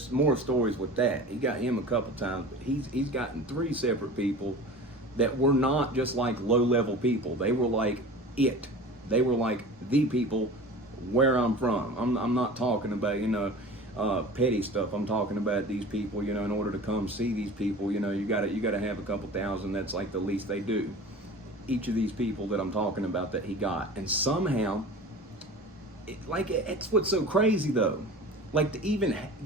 more stories with that. He got him a couple times, but he's gotten 3 separate people that were not just like low-level people. They were like it. They were like the people where I'm from. I'm not talking about, you know, petty stuff. I'm talking about these people, you know, in order to come see these people, you know, you gotta have a couple thousand. That's like the least they do. Each of these people that I'm talking about that he got. And somehow, it's what's so crazy though. Like, to even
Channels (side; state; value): both; normal; correlation 0.38